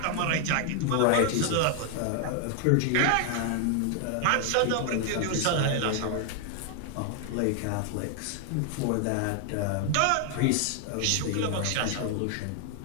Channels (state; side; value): different; both; correlation 0.00